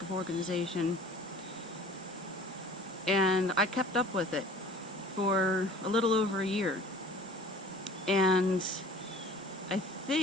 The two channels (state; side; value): normal; both; correlation 0.46